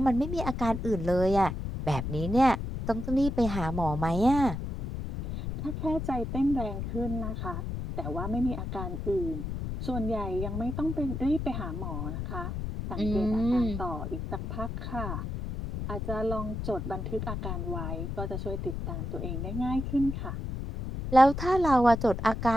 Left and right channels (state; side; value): noise; left; rumble, 5 dB below the sound